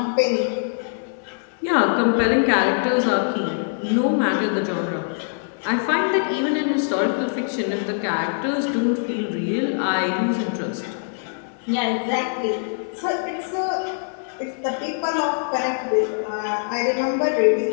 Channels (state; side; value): silent; right; digital silence